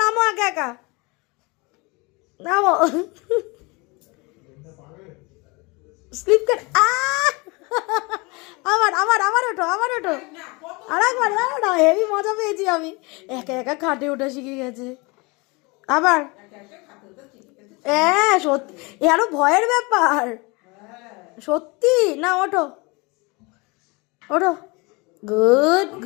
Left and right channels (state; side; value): quieter; right; 26.9 dB